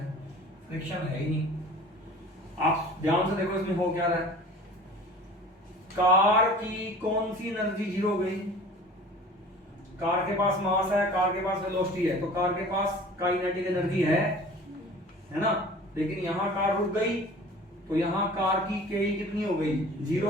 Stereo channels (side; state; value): both; normal; correlation 0.43